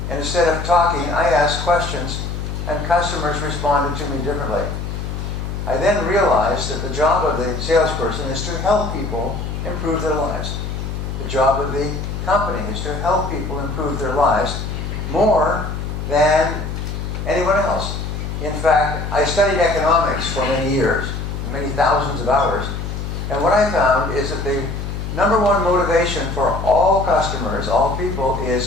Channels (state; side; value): noise; left; hum, 5 dB below the sound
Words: and instead of talking, I asked questions, and customers responded to me differently. I then realized that the job of the salesperson is to help people improve their lives. The job of the company is to help people improve their lives more than anyone else. In fact, I studied economics for many years, many thousands of hours, and what I found is that the number one motivation for all customers, all people,